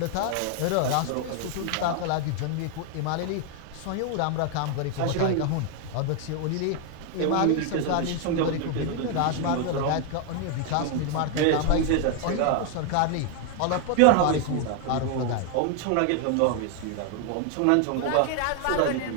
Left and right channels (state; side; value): different; both; correlation 0.00